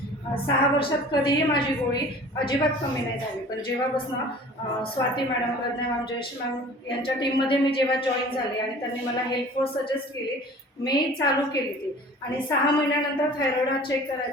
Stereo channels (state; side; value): normal; both; correlation 0.45